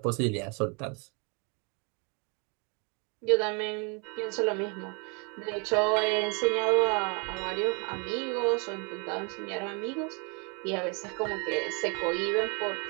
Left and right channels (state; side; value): quieter; left; 33.5 dB